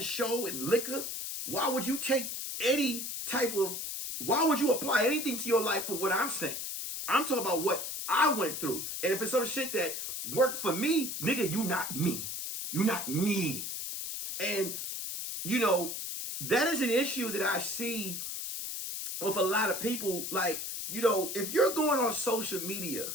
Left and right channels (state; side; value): noise; left; hiss, 5 dB below the sound